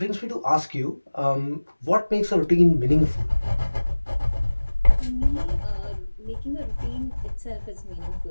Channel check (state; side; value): inverted; both; correlation -1.00